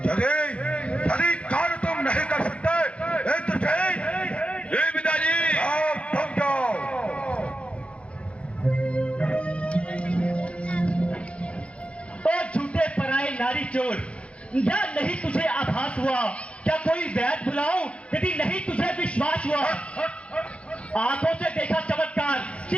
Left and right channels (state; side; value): late; right; 0.061 ms